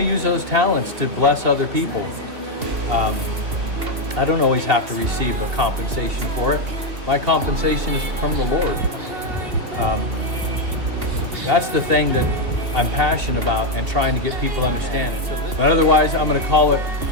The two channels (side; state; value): left; late; 2.8 ms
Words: use those talents to bless other people. I don't always have to receive a compensation for it. My compensation is from the Lord. That's the thing that I'm passionate about and trying to get people to understand it. But otherwise, I'm going to call it